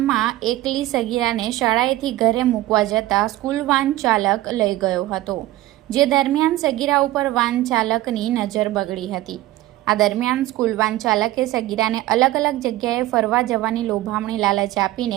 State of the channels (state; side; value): quieter; left; 16.2 dB